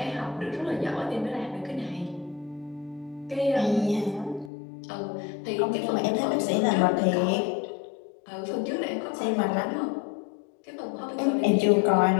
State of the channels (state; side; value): drops out; right; at 4.5 s